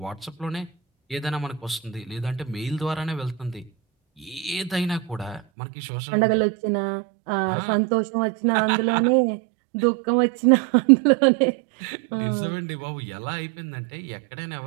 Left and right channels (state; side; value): drops out; left; at 5.4 s